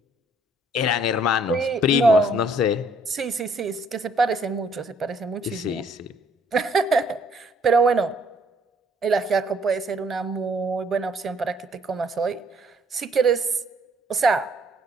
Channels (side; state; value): both; normal; correlation 0.63